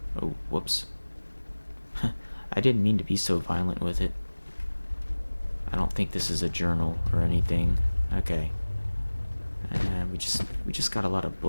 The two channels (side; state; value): both; inverted; correlation -1.00